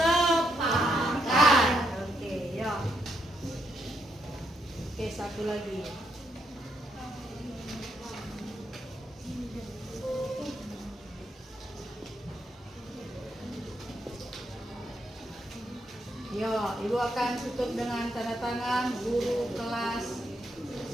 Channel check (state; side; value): normal; both; correlation 0.78